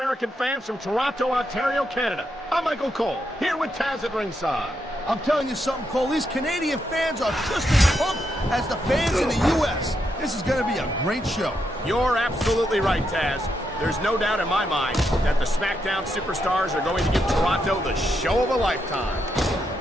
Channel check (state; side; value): normal; both; correlation 0.81